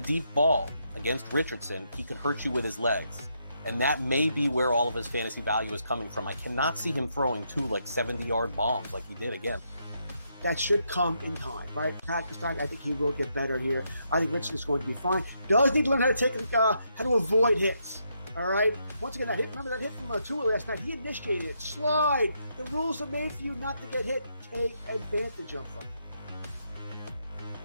deep ball against Richardson, he can hurt you with his legs. And that may be where all of his fantasy value is coming from. I cannot see him throwing 2 70-yard bombs like he did again. That should come in time, right? Practice time. I think he will get better here. I think Richardson is going to be fine. Does need to learn how to avoid hits. All right. Once again, remember that hit from Tua last night? He initiated it. Slide. The rules are made for you not to get hit. Take advantage of them.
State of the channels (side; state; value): both; inverted; correlation -0.78